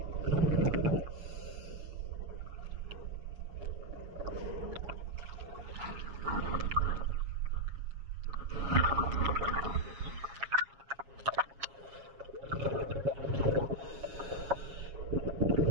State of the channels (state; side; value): late; left; 7.3 ms